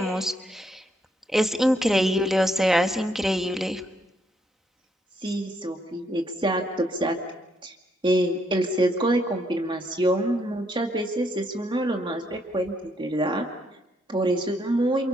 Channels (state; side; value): normal; both; correlation 0.74